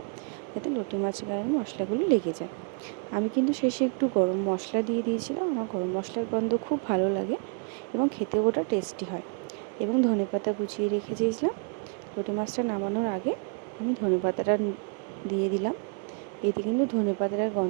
যাতে লোটে মাছের গায়ে মশলাগুলো লেগে যায়। আমি কিন্তু শেষে একটু গরম মশলা দিয়ে দিয়েছিলাম। আমার গরম মশলার গন্ধ খুব ভালো লাগে, এবং খেতেও ওটা টেস্টি হয়। এবং ধনেপাতা কুচিয়ে রেখে দিয়েছিলাম। লোটে মাছটা নামানোর আগে আমি ধনেপাতাটা দিয়ে দিলাম। এতে কিন্তু ধনেপাতার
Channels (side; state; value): left; quieter; 39.4 dB